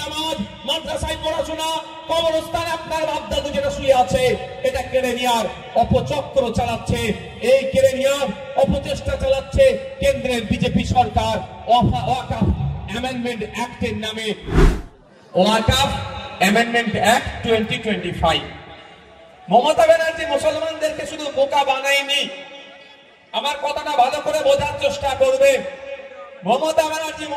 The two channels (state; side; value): identical; both; correlation 1.00